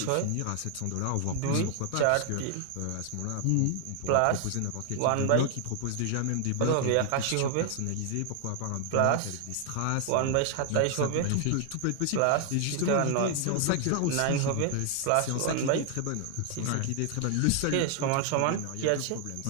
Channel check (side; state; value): both; different; correlation 0.00